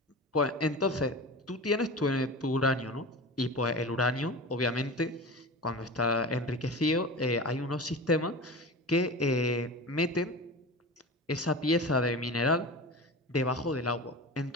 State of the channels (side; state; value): both; normal; correlation 0.31